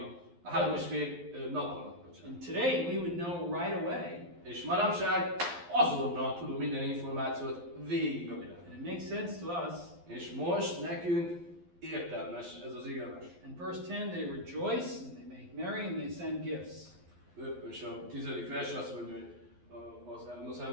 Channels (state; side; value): late; left; 12 ms